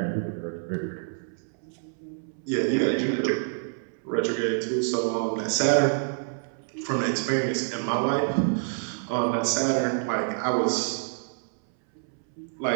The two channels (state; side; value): silent; left; 60 dB below the other